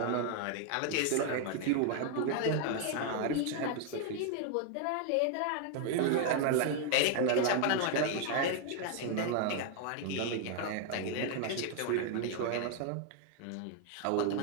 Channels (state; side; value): different; both; correlation 0.00